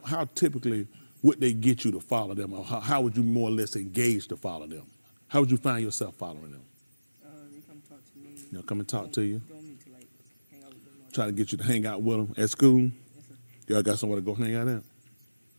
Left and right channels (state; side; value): inverted; both; correlation -1.00